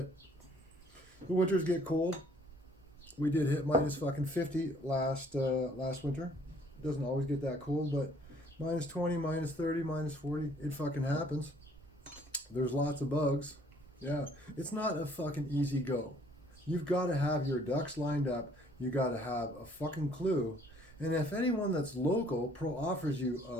The winters get cold. We did hit minus fucking 50 last winter. It doesn't always get that cold, but minus 20, minus 30, minus 40, it fucking happens. There's lots of bugs. Yeah, it's not a fucking easy go. You've got to have your ducks lined up. You got to have a fucking clue. And if anyone that's local offers you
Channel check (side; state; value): both; normal; correlation 0.60